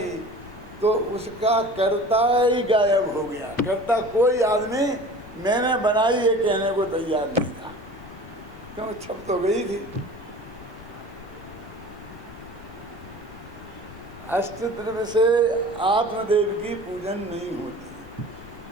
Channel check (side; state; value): left; noise; rumble, 18 dB below the sound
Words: तो उसका कर्ता ही गायब हो गया। कर्ता कोई आदमी मैंने बनाई ये कहने को तैयार नहीं था, क्यों? छप तो गई थी। अष्टद्रव्य से आत्मदेव की पूजन नहीं होती।